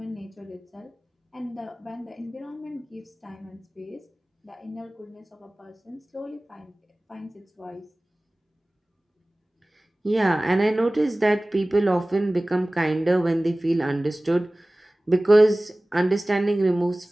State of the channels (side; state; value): both; normal; correlation 0.98